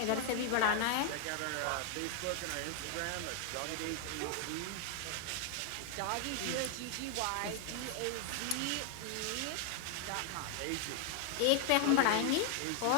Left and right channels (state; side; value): different; both; correlation 0.00